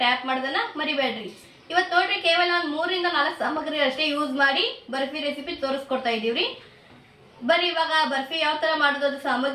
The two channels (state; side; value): identical; both; correlation 1.00